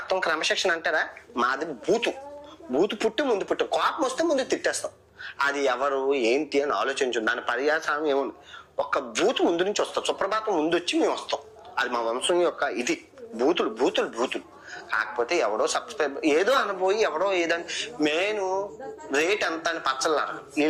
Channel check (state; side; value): identical; both; correlation 1.00